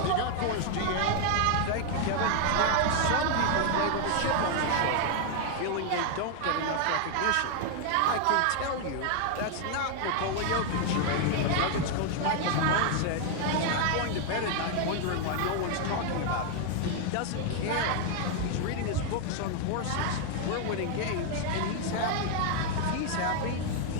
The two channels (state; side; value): different; both; correlation 0.00